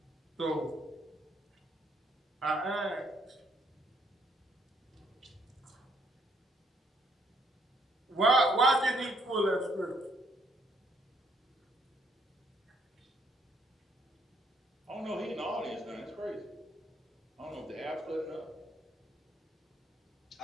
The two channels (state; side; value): normal; both; correlation 0.69